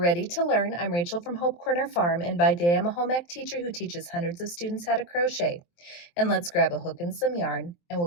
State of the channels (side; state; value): right; late; 23 ms